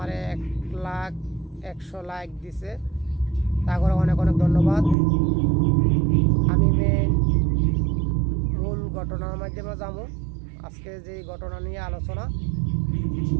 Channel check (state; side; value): drops out; left; at 5.0 s